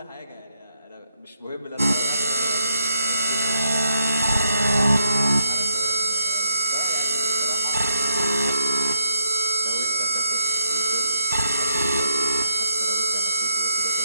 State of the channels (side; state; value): both; inverted; correlation -0.80